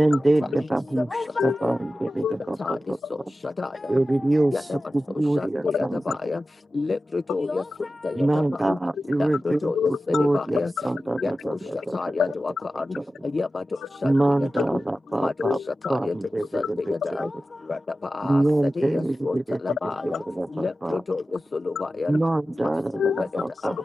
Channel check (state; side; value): normal; both; correlation 0.94